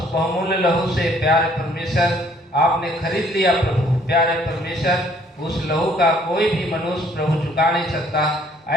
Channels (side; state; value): both; normal; correlation 0.62